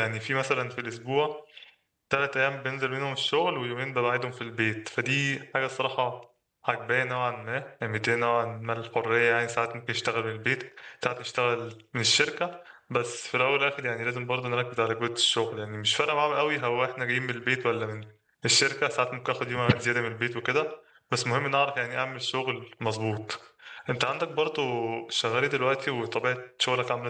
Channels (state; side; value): identical; both; correlation 1.00